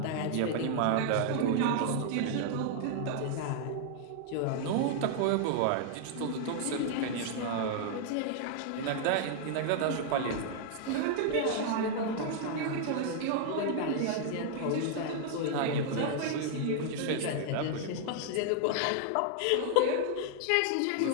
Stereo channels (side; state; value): both; different; correlation -0.01